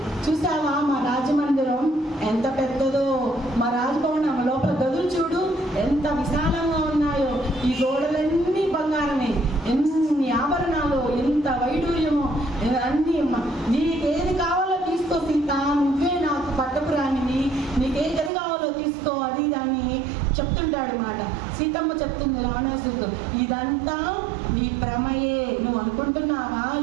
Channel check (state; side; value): drops out; left; at 18.3 s